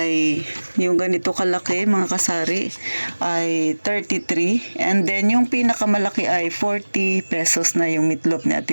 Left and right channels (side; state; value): both; inverted; correlation -1.00